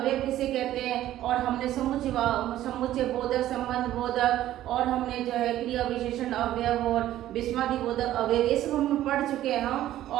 किसे कहते हैं। और हमने समुच्चय बोधक, संबंध बोधक और हमने जो है क्रिया विशेषण अवयव और विस्मादि बोधक अवयव ये सब हम पढ़ चुके हैं हम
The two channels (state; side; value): quieter; left; 13.4 dB